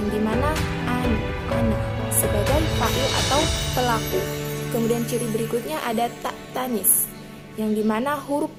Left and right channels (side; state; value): both; identical; correlation 1.00